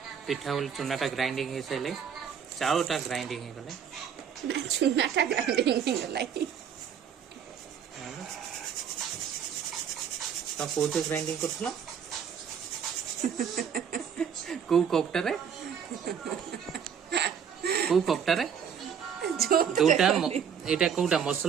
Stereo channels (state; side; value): quieter; left; 7.7 dB